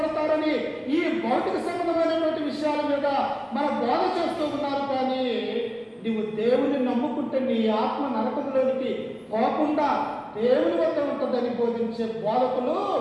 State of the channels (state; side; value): identical; both; correlation 1.00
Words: ఈ భౌతిక సంబంధమైనటువంటి విషయాల మీద మన బోధ చేస్తూ ఉన్నారు. కానీ నీవు దేవుని నమ్ముకుంటే నీ ఆత్మ నరకంలోనికి పోకుండా దేవుని వద్ద ఉంటుందని బోధించే బోధకులు